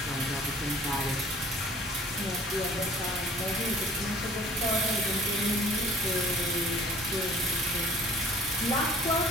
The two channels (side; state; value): both; normal; correlation 0.51